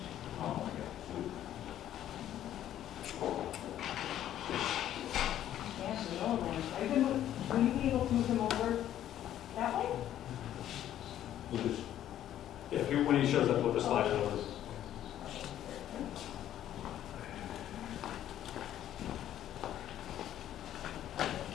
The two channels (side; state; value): right; quieter; 11.7 dB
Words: Oh, my God. Yeah, the old one. Will you be able to move him over that way? We'll just, Yeah, if you, when he shows up, we'll just slide it over.